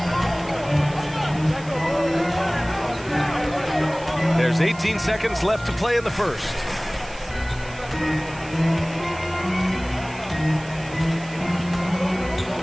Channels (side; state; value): right; noise; hiss, 19 dB below the sound